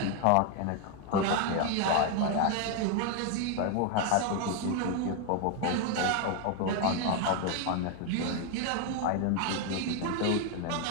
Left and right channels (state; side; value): different; both; correlation 0.01